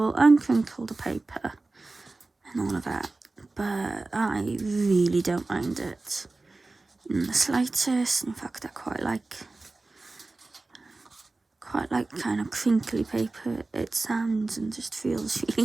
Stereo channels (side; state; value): left; quieter; 3.3 dB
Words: and crinkle the paper and all of that. But I really don't mind it in the slightest. In fact, I quite like kind of crinkly paper. It sounds and just feels